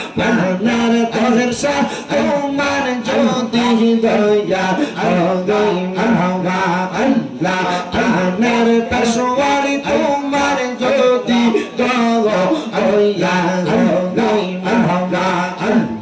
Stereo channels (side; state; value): both; identical; correlation 1.00